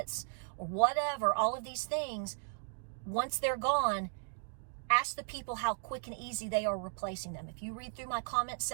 or whatever, all of these things. Once they're gone, ask the people how quick and easy they are replacing them. If you read through my comment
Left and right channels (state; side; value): silent; left; digital silence